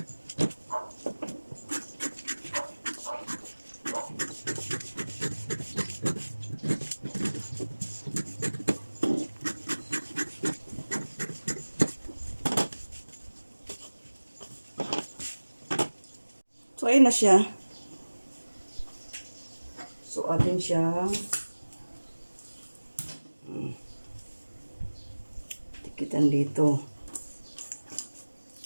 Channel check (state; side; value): inverted; both; correlation -1.00